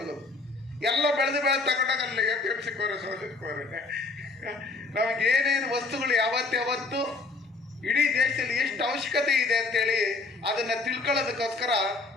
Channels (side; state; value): right; quieter; 3.6 dB